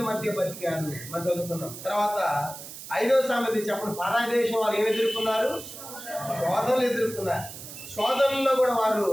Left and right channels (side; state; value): right; noise; hiss, 12 dB below the sound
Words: మధ్య బతికారు మనం చదువుకున్నాం. తర్వాత 5వ సంగతి చెప్పండి, పరాయి దేశం వాళ్ళు ఏమి ఎదుర్కొన్నారు? శోధనలు ఎదుర్కొన్నారు. శోధనలో కూడా వారు